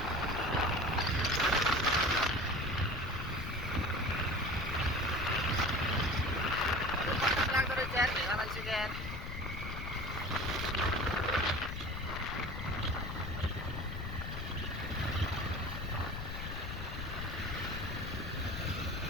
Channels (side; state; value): left; noise; rumble, 6 dB below the sound